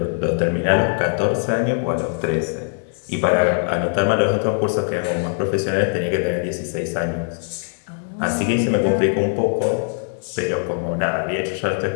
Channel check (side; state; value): right; silent; 55 dB below the other